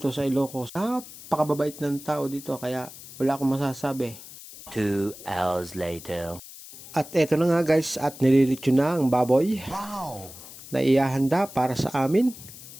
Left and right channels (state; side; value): noise; left; hiss, 16 dB below the sound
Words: sa Ilocos. Napakababait ng tao dito kaya wala akong masasabi. 2 hours later. At eto na nga guys, at nililitsyon na ang baboy. Wow! Na iahanda para sa amin.